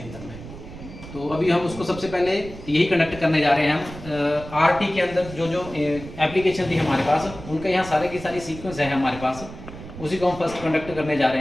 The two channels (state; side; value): noise; right; rumble, 14 dB below the sound